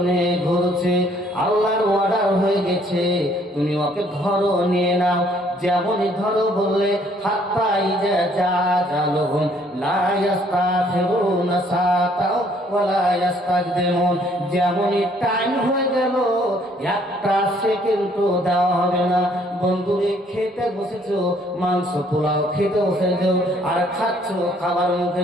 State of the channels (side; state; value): both; normal; correlation 0.63